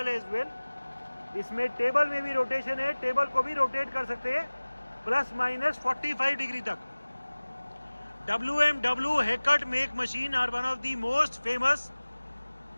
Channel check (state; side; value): inverted; both; correlation -1.00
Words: as well. इसमें table में भी rotation है, table को भी rotate कर सकते हैं ±45 degree तक. WMW Haircut make machine are one of the most famous